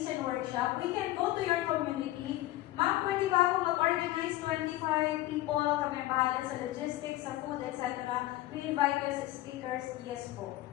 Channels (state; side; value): quieter; right; 16.2 dB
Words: and workshop. We can go to your community. Ma'am, pwede ba ako mag-organize 25 people? Kami ang bahala sa logistics, sa food, etc. We invite you as speakers. Yes po.